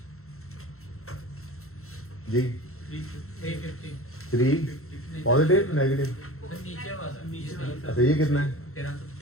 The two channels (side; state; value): right; late; 0.63 ms